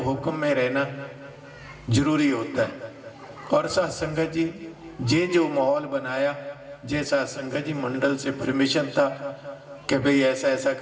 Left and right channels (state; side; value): identical; both; correlation 1.00